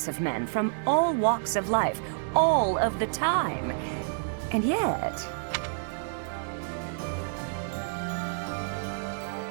of men from all walks of life, all of the time. And yet...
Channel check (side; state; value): left; silent; digital silence